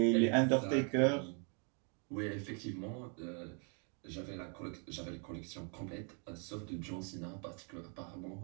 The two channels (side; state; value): left; quieter; 39.4 dB